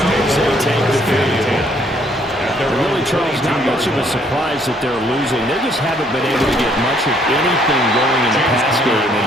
as they take the field. Really, Charles, not much of a surprise that they're losing. They just haven't been able to get much of anything going in the pass game.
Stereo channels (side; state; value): both; normal; correlation 0.66